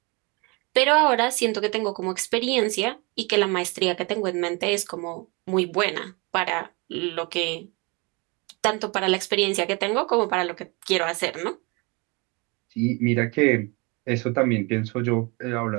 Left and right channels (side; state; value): left; quieter; 28.6 dB